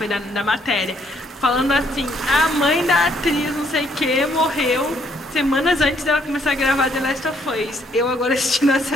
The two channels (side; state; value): both; normal; correlation 0.69